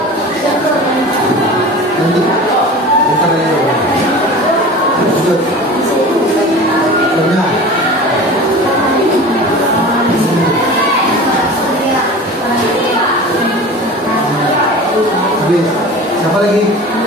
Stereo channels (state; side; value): normal; both; correlation 0.36